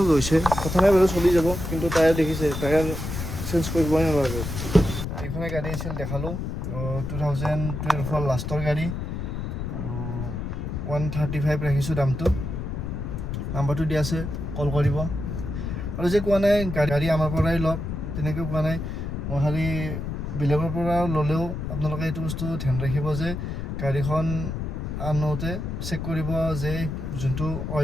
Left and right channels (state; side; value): noise; left; rumble, 4 dB below the sound